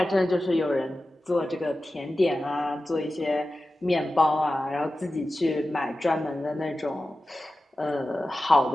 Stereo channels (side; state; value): both; normal; correlation 0.94